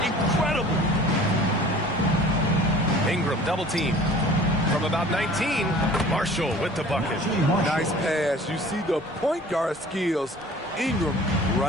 incredible. Ingram double team. From about 19, Marshall with the bucket. Nice pass. You see the point guard skills. Ingram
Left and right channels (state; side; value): normal; both; correlation 0.47